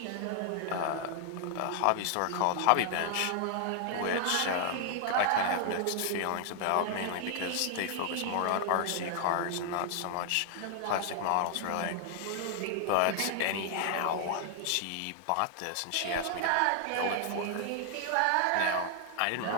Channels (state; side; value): different; both; correlation 0.00